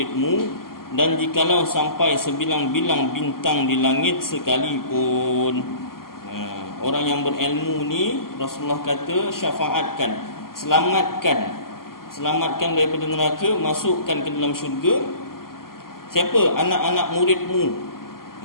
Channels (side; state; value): right; late; 0.92 ms